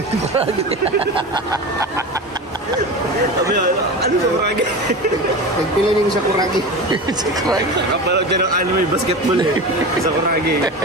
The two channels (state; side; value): normal; both; correlation 0.28